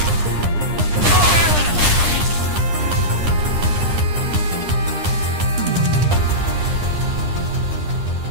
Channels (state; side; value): late; left; 9.9 ms